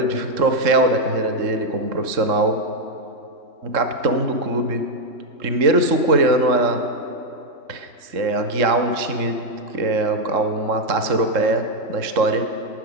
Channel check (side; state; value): left; late; 3.6 ms